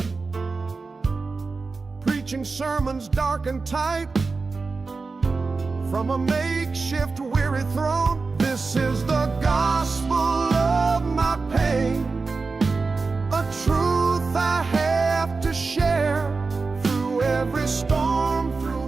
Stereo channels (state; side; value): quieter; left; 4.2 dB